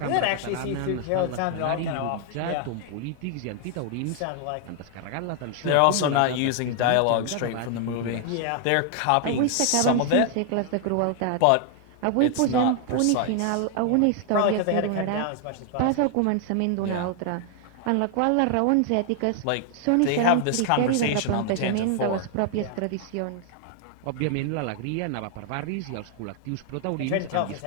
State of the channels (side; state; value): both; different; correlation 0.00